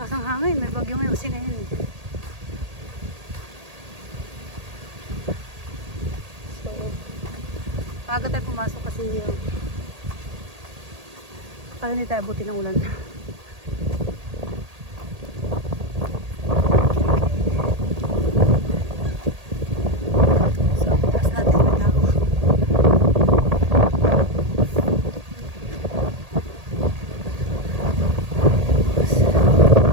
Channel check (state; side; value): late; left; 1.8 ms